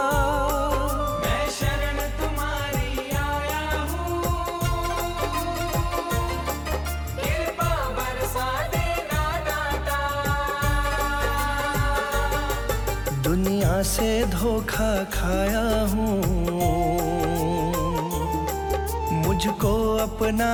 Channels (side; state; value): both; identical; correlation 1.00